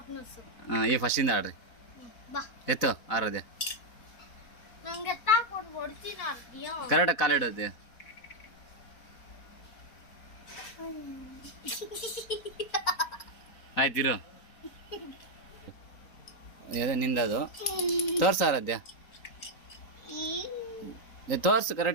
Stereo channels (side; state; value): right; late; 4.0 ms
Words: ಹಾಂ, ಈ ಫಸ್ಟಿಂದ ಆಡ್ರಿ. ಎತ್ತು ಆರೋದ್ಯ ಕರೆಕ್ಟಾಗಿ ಕಾಲಿಡೋದು. ಆಯ್ತಿರು. ಅದೇ ನಿಂದದು ತೋರ್ಸು ಆರಾಧ್ಯ, ತೋರ್ಸು